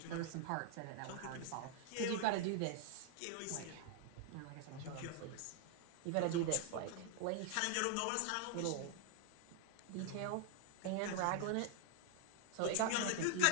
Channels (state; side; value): different; both; correlation 0.00